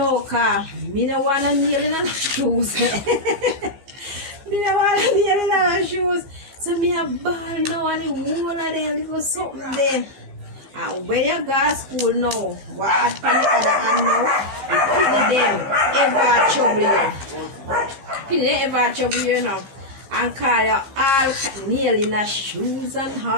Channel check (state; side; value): late; left; 15 ms